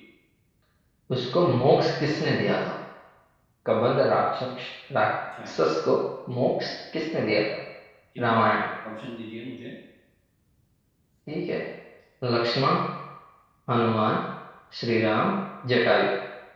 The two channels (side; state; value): both; identical; correlation 1.00